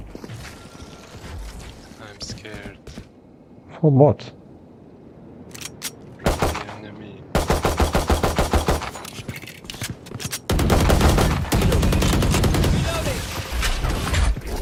I'm scared. For what? From the enemy.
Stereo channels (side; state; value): both; identical; correlation 1.00